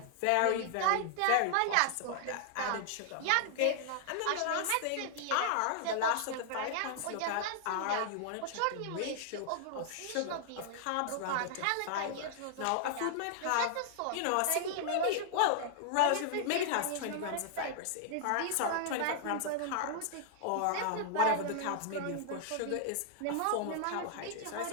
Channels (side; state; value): both; different; correlation -0.01